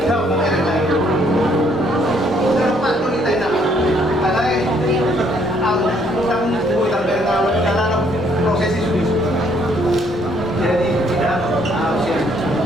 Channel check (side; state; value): both; normal; correlation 0.67